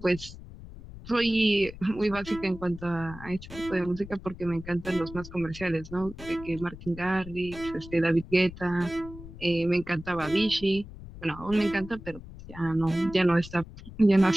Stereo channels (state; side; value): noise; left; rumble, 15 dB below the sound